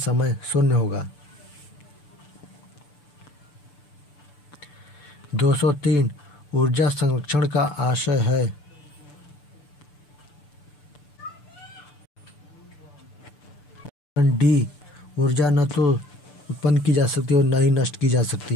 0 होगा। 203 ऊर्जा संरक्षण का आशय है। डी ऊर्जा न तो उत्पन्न की जा सकती है और न ही नष्ट की जा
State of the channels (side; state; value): right; late; 6.8 ms